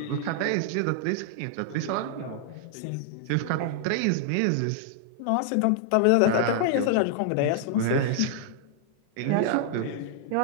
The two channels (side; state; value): both; different; correlation -0.01